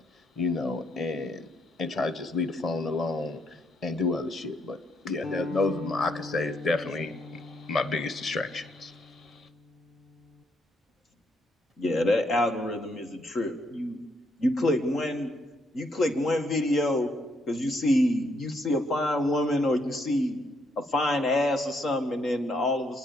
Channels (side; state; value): both; normal; correlation 0.74